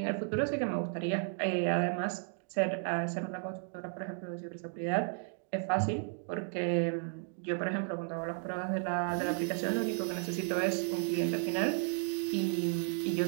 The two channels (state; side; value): silent; left; 55 dB below the other